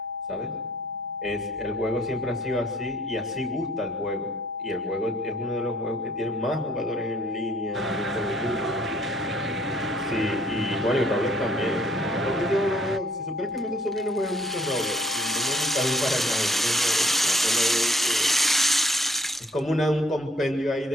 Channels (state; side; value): normal; both; correlation 0.63